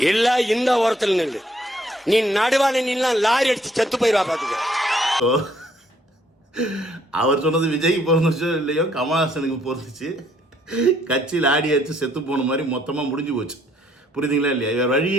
எல்லா இந்த ஓரத்தில் நில்லு, நீ நடுவான நில்லாம் லாரி அடிச்சு செத்து போயிருவா பாத்துக்க. அவர் சொன்னது விஜய்க்கு பொருந்துச்சோ இல்லையோ கமலஹாசனுக்கு பொருந்துச்சு. கட்சியில் ஆடி அடிச்சு செத்து போன மாதிரி மொத்தமாக முடிஞ்சு போச்சு. புரியுதுங்களா இல்லையா? இவர்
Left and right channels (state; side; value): normal; both; correlation 0.67